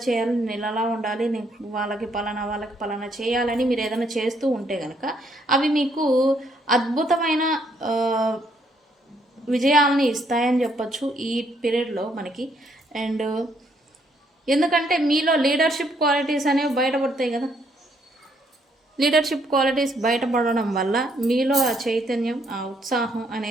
చేయాలి, నేను ఇలా ఉండాలి, నేను వాళ్ళకి పలానా చేయాలని మీరు ఏదైనా చేస్తూ ఉంటే కనుక అవి మీకు అద్భుతమైన విజయాలని ఇస్తాయని చెప్పచ్చు ఈ పీరియడ్లో మనకి. అండ్ ఎందుకంటే మీలో లీడర్షిప్ క్వాలిటీస్ అనేవి బయటపడతాయి కదా. లీడర్షిప్ క్వాలిటీస్ బయటపడడం వల్ల మీలో ఆ చైతన్యం, ఆ ఉత్సాహం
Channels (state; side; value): normal; both; correlation 0.71